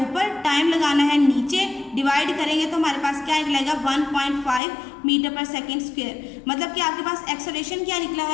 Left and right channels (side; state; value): right; drops out; at 4.6 s